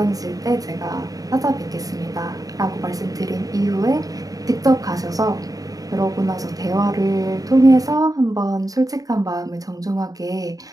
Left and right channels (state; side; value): late; left; 0.18 ms